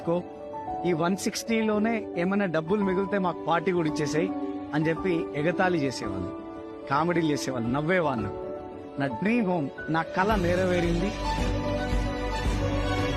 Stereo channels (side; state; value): both; identical; correlation 1.00